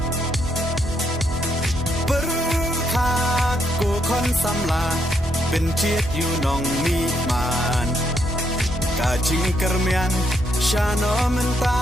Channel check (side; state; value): both; normal; correlation 0.76